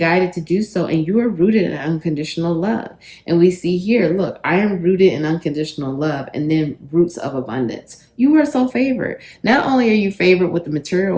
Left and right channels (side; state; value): both; identical; correlation 1.00